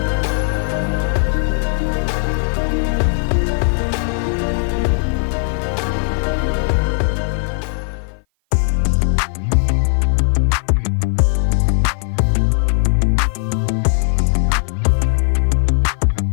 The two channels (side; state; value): right; silent; 56 dB below the other